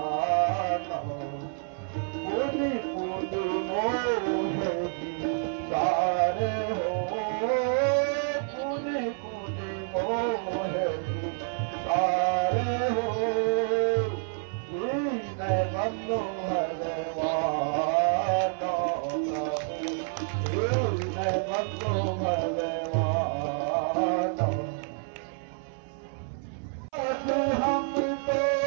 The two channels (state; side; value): silent; left; 59 dB below the other